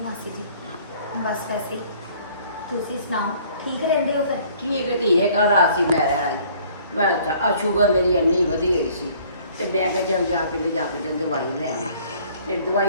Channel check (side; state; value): both; inverted; correlation -0.56